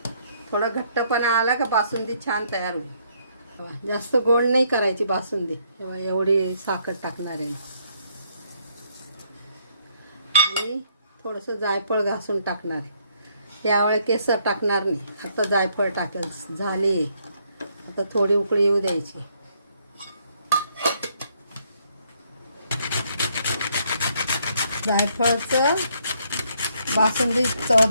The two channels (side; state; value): both; inverted; correlation -0.70